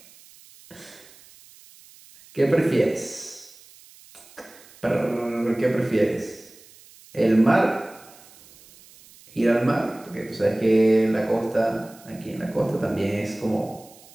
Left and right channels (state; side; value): noise; right; hiss, 24 dB below the sound